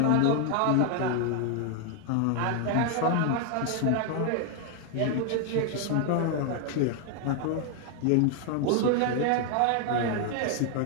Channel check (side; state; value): both; different; correlation 0.00